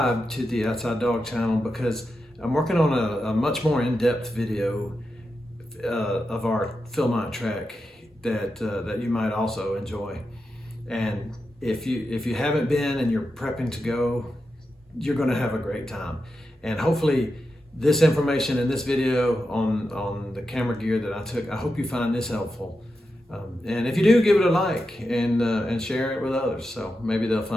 to the Outside Dog channel because I'm working on a much more in-depth video of our Philmont track that you might also enjoy. And if you haven't been and you're prepping to go, you're going to have a great time. And hopefully this information in this video on the camera gear that I took, I hope you find this helpful. And if you do, give it a like and share it with others, so maybe they'll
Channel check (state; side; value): normal; both; correlation 0.89